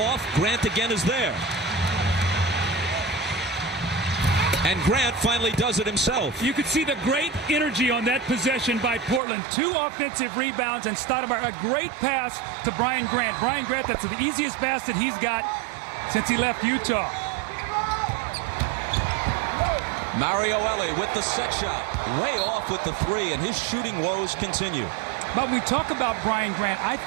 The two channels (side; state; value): left; drops out; at 9.2 s